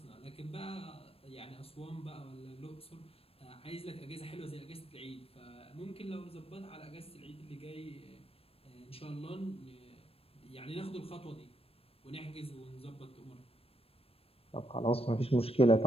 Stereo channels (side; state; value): right; late; 0.28 ms